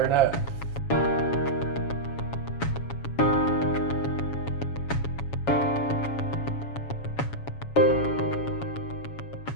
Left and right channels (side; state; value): right; late; 7.2 ms